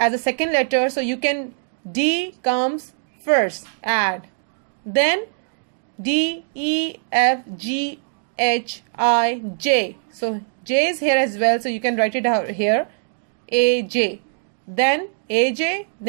a second letter. So you can, D comes first, add. Then D, E, F, G, H, I, J. So J is here as well. So you can write it out here. A, J. Then A, J.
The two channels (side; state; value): left; silent; digital silence